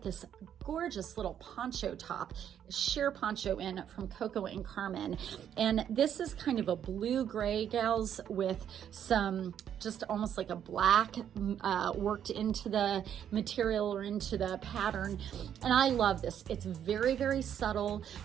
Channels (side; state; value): left; quieter; 9.4 dB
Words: this gorgeous little poncho top, sheer poncho in from Coco and Carmen, and this is kind of a blue gray, gals, with some just almost like a black worked into the material or into the pattern, and I love this. It's very subtle.